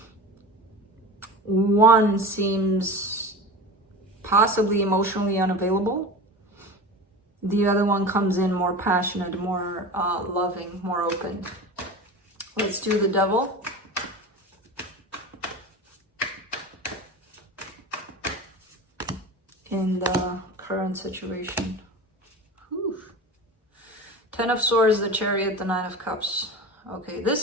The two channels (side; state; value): both; normal; correlation 0.31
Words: One seems possibly emotionally unavailable. The other one comes in more passionate, more loving, more open. Let's do the Devil. In the current situation. Whew. Ten of Swords, the Chariot, the Nine of Cups. Okay, this